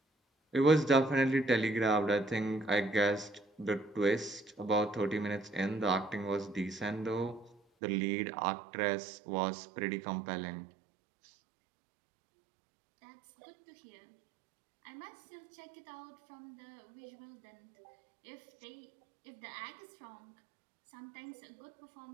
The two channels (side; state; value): left; drops out; at 7.6 s